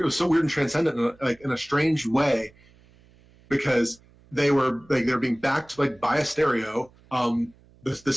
it was so weird and transcendent in a strange way, because they were being backed like by a stereo. The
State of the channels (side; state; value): right; noise; hum, 29 dB below the sound